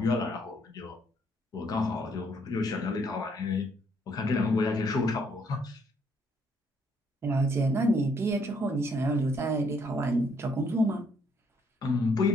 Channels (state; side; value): normal; both; correlation 0.69